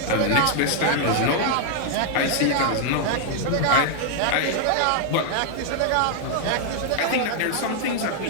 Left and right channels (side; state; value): both; different; correlation 0.00